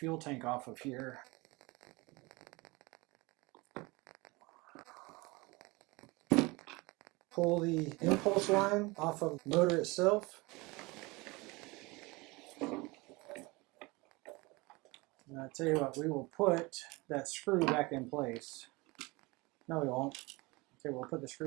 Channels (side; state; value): left; quieter; 24.3 dB